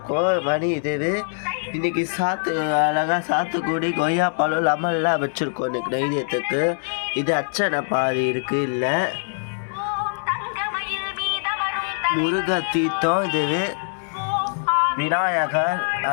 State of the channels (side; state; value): right; silent; digital silence